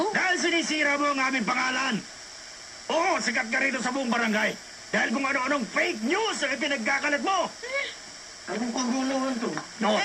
Dahil sinisira mo ang aming pangalan. Oo, sikat ka rito sa buong barangay. Dahil kung ano-anong fake news ang ipinagkakalat mo. Anong kagulawan to? No,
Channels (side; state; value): both; identical; correlation 1.00